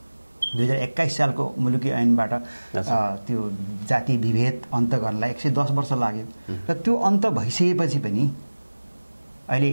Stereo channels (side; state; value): both; inverted; correlation -1.00